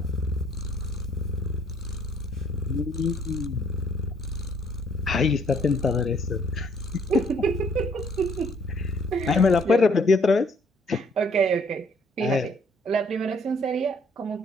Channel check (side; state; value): both; normal; correlation 0.63